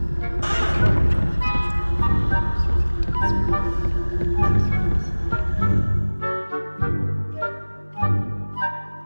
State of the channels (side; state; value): both; inverted; correlation -1.00